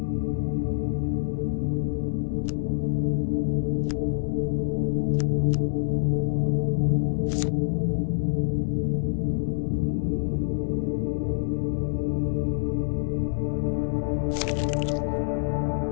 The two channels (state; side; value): silent; right; 61 dB below the other